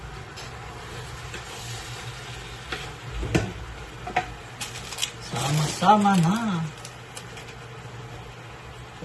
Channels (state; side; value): identical; both; correlation 1.00